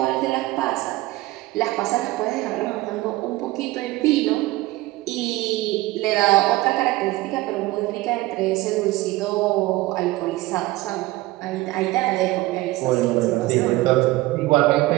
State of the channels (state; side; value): quieter; left; 19.0 dB